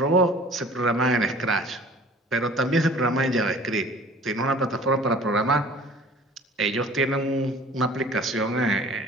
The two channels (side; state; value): both; normal; correlation 0.47